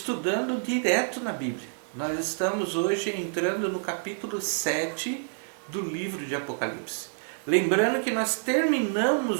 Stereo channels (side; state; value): left; silent; 59 dB below the other